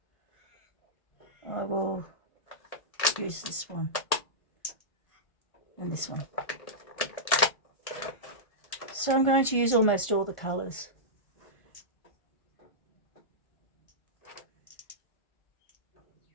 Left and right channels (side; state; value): right; late; 1.7 ms